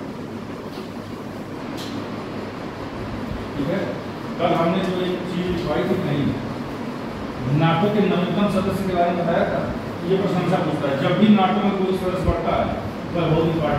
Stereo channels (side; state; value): both; identical; correlation 1.00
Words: कल हमने जो एक चीज लिखवाई थी नहीं, नाटो के नवीनतम सदस्य के बारे में बताया था। ये प्रशंसा पूछता है, जब भी नाटो में कोई सदस्य बढ़ता है तो बहुत